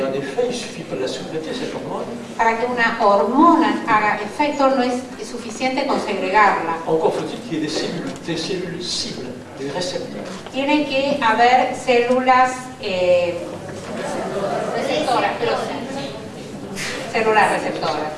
un effet, il ne suffit pas de la sécréter, cette hormone. Para que una hormona haga efecto no es suficiente con segregarla. Encore faut-il qu'il y ait des cellules cibles, des récepteurs. Tiene que haber células receptoras, células receptoras.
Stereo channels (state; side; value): identical; both; correlation 1.00